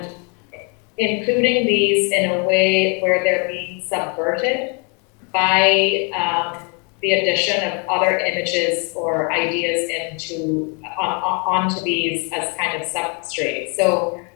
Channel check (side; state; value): right; quieter; 35.7 dB